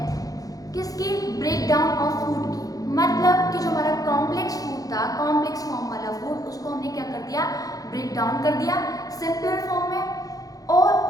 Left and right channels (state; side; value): late; right; 0.17 ms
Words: किसकी, ब्रेक डाउन ऑफ फूड की, मतलब कि जो हमारा कॉम्प्लेक्स फूड था, कॉम्प्लेक्स फॉर्म वाला फूड, उसको हमने क्या कर दिया, ब्रेक डाउन कर दिया सिंपलर फॉर्म में। और